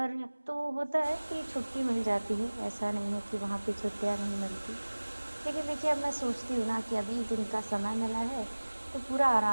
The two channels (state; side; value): inverted; both; correlation -1.00